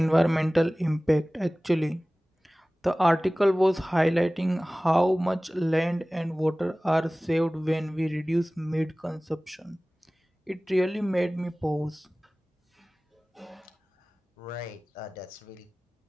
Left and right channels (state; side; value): normal; both; correlation 0.98